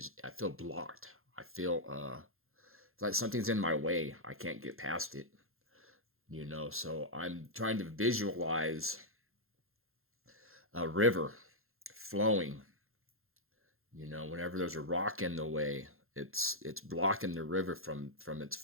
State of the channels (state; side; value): late; left; 0.61 ms